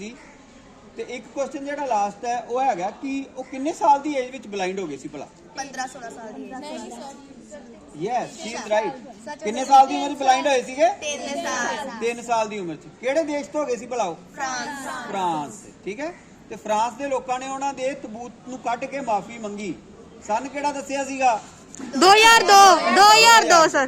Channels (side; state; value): both; identical; correlation 1.00